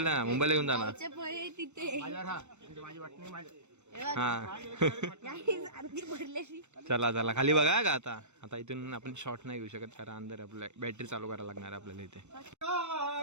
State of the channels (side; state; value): left; late; 0.83 ms